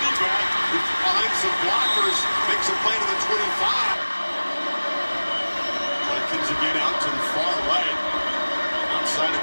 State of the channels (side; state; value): both; inverted; correlation -1.00